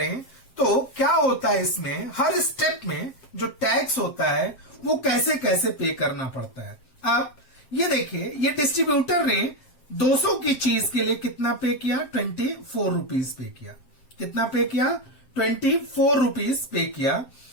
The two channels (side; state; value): right; late; 7.5 ms